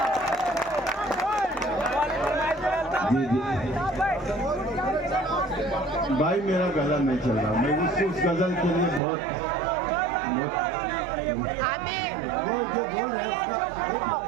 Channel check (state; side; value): drops out; left; at 9.0 s